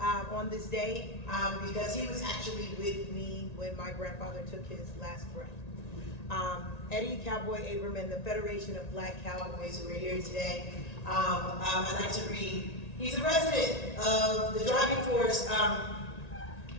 this day because he was actually with me when my grandfather took his last breath. Eddie Cowboy Abram and the Federation of Black Cowboys who are here today. I'd like to read. He's a resident of the driving force.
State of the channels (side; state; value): right; late; 1.9 ms